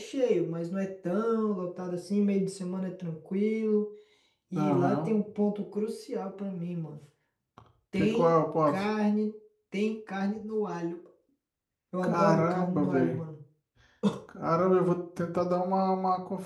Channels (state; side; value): identical; both; correlation 1.00